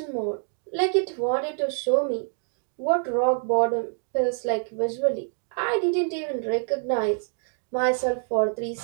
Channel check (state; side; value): silent; left; 55 dB below the other